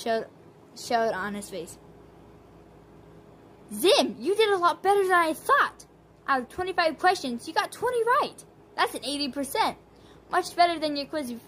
on his face. Zim, you did a lot better than I thought. Out of 25 questions, you got 20 right. That's an 80%. Much better than your quiz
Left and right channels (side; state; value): both; identical; correlation 1.00